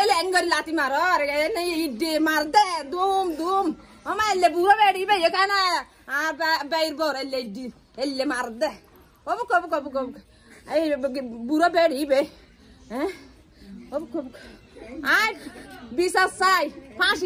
লেঙ্গরি লাতি মার আরে নাই ইডে মার দে দুম দুম আমার এলে বুড়ো বেড়ি বে এখানে আর বাইর বর এলে মার দে ওবু কবু কবু কবু এই বুড়ো বেড়ি বে হ্যাঁ ওবু কবু আর বিশা সাই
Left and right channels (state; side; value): identical; both; correlation 1.00